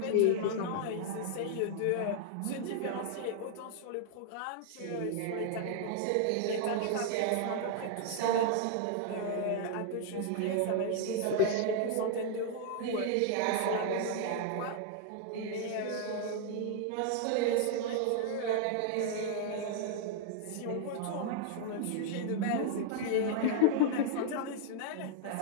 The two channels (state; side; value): different; both; correlation 0.00